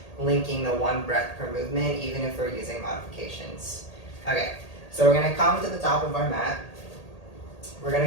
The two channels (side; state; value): right; late; 1.8 ms